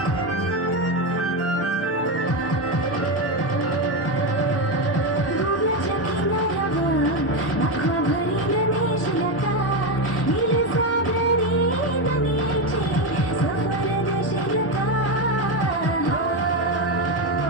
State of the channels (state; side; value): late; right; 1.1 ms